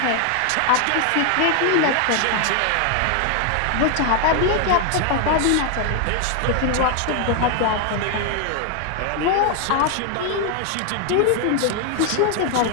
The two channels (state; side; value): different; both; correlation 0.00